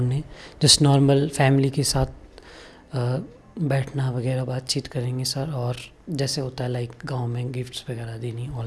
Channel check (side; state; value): both; identical; correlation 1.00